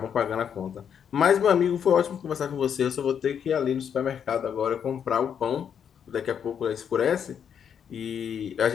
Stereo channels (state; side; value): quieter; right; 8.0 dB